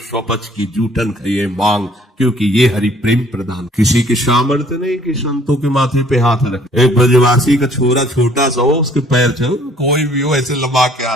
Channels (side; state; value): both; normal; correlation 0.58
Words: की जूठन खाइए मांग, क्योंकि ये हरि प्रेम प्रदान। किसी के सामर्थ्य नहीं कि संतों के माथे पे हाथ रखे। एक ब्रजवासी का छोरा छोटा सा हो, उसके पैर चलो, कोई भी हो ऐसे लंबा के